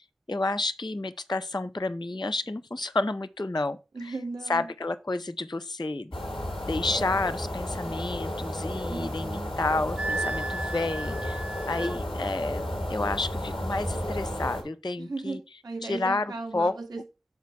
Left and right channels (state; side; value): normal; both; correlation 0.81